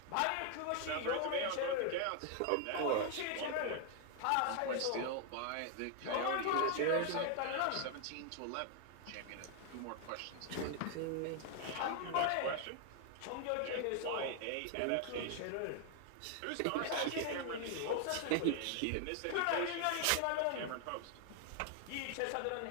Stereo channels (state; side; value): different; both; correlation 0.00